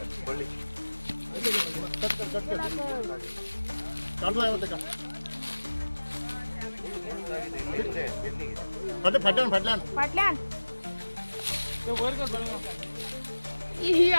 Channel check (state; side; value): inverted; both; correlation -1.00